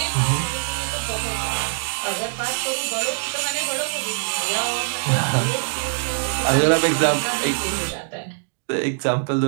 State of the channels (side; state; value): left; silent; digital silence